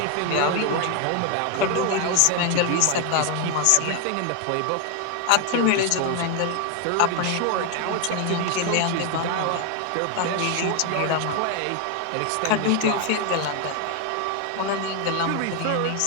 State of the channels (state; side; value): different; both; correlation 0.01